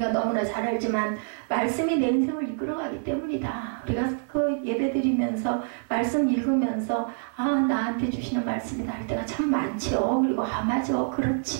너무나 잘 알지만 말씀이 내 인생을 이끌어가기 때문이다. 우리가 그 예배 드리면서 말씀 읽으면서 나한테 주시는 말씀이다 할 때가 참 많죠. 그리고 맞아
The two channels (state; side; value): silent; left; 57 dB below the other